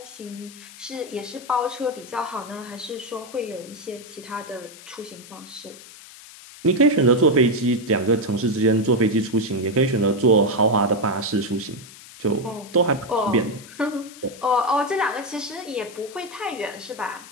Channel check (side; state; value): left; noise; hiss, 18 dB below the sound